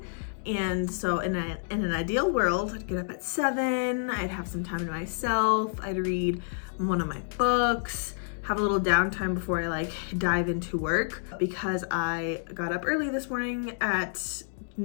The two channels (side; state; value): right; silent; digital silence